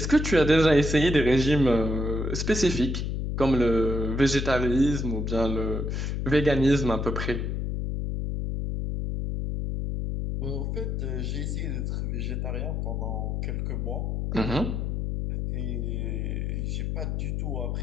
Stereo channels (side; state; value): left; noise; hum, 1 dB below the sound